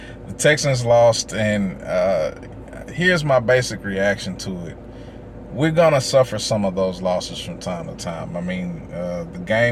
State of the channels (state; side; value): identical; both; correlation 1.00